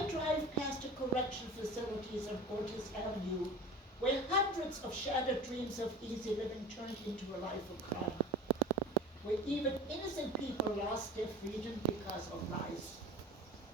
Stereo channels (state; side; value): normal; both; correlation 0.37